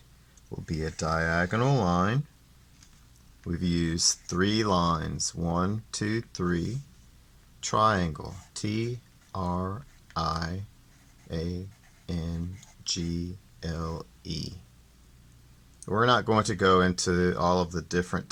will be a diagonal line. We've used 3 lines, 1, 2, 3. Triangle, T-R-I-A-N-G-L-E. We're not going to go into all of the different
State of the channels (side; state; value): both; identical; correlation 1.00